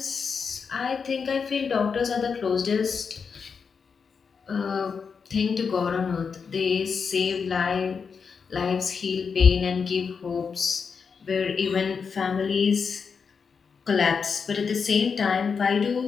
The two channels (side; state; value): right; quieter; 5.8 dB